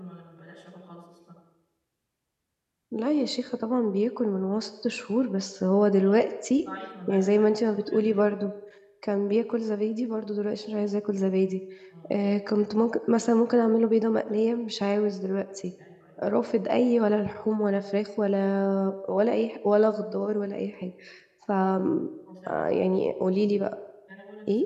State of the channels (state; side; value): identical; both; correlation 1.00